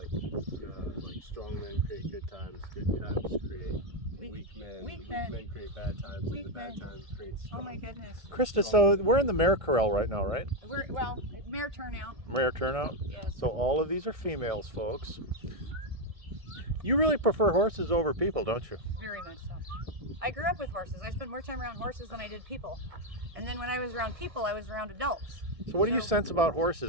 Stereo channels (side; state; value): left; late; 1.6 ms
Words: strong men create good times create weak men create bad times, and the bad times create strong. Oh my goodness. Krista, so we're in the mare corral right now, right? Well, mare turnout. Mare turnout? Yes. So all of these are females, folks. You really prefer horses over people, don't you? Very much so. I grew up with horses. I spent more time around horses than I did people. And then when I was around people, I was around adults. So what do you sense about